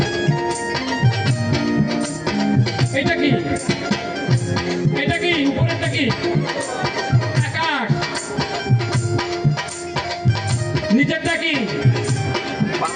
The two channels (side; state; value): both; identical; correlation 1.00